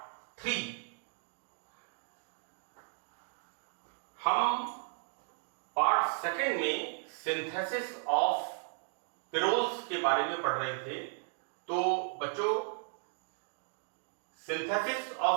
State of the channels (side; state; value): left; silent; 54 dB below the other